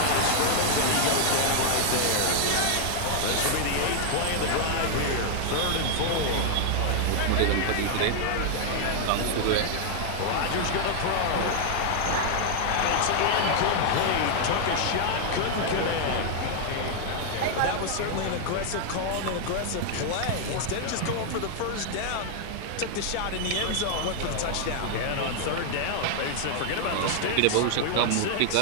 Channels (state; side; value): different; both; correlation 0.00